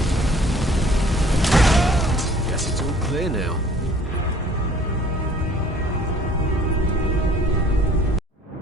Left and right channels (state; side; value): normal; both; correlation 0.54